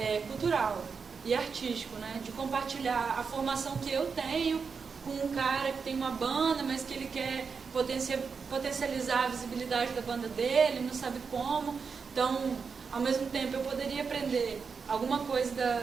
cultural e artístico, né? De compartilhar a formação que eu tenho com um cara que tem uma banda, mas que ele quer potencializar a visibilidade da banda dele, não sabe como. Então, ao mesmo tempo, eu poderia aprender alguma coisa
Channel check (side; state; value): left; quieter; 5.5 dB